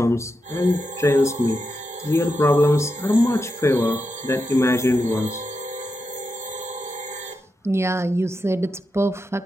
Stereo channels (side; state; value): both; normal; correlation 0.87